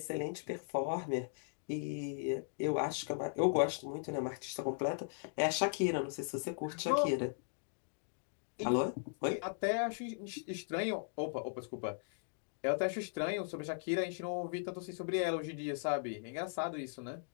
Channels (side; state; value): right; silent; digital silence